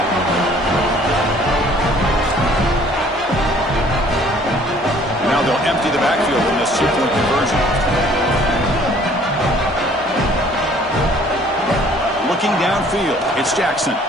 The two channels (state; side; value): normal; both; correlation 0.56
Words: Now they'll empty the backfield in this 2-point conversion. Looking downfield, it's Jackson.